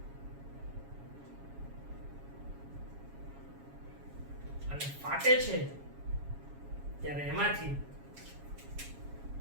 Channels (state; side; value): late; left; 7.2 ms